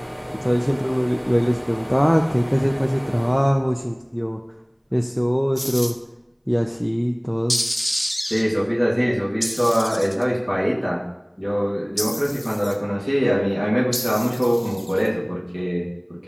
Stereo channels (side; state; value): both; identical; correlation 1.00